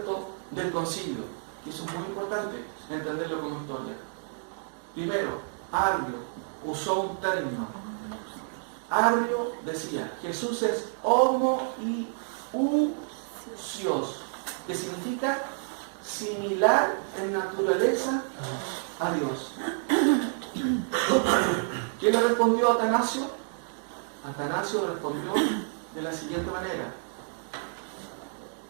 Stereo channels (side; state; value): left; silent; digital silence